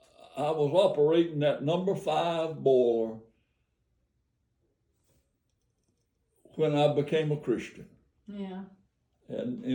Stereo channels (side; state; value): both; identical; correlation 1.00